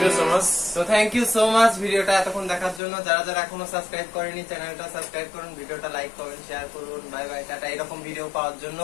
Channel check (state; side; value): drops out; right; at 2.8 s